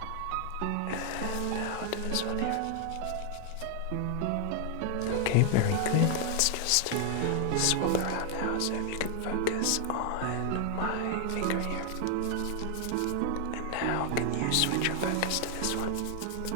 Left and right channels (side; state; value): both; different; correlation 0.00